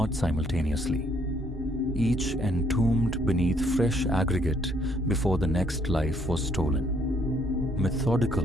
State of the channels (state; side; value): normal; both; correlation 0.67